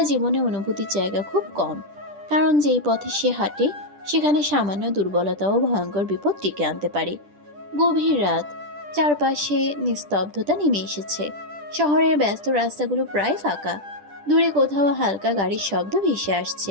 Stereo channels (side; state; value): left; late; 10 ms